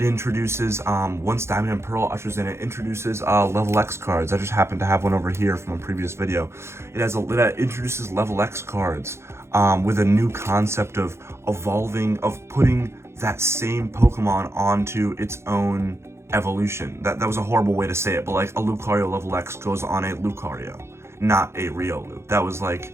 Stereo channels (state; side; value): late; left; 0.13 ms